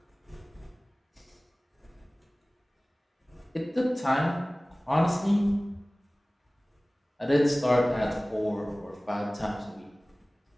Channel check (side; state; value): both; normal; correlation 0.98